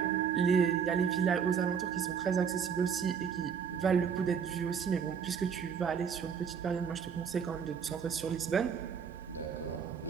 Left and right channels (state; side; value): quieter; left; 7.0 dB